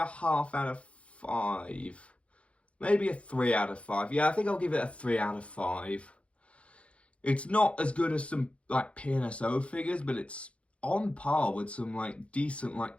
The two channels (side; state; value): right; late; 0.062 ms